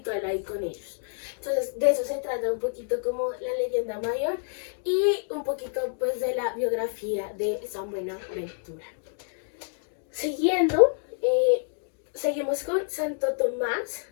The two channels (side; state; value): right; silent; digital silence